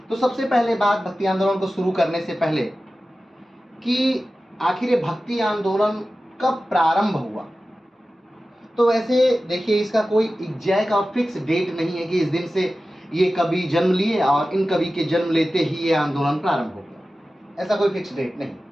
तो सबसे पहले बात भक्ति आंदोलन को शुरू करने से पहले कि आखिर ये भक्ति आंदोलन कब प्रारंभ हुआ। तो वैसे देखिए, इसका कोई एग्जैक्ट और फिक्स डेट नहीं है कि इस दिन से ये कवि जन्म लिए और इन कवि के जन्म लेते ही ये आंदोलन प्रारंभ हो गया। ऐसा कोई फिक्स डेट नहीं।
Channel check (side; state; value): both; normal; correlation 0.95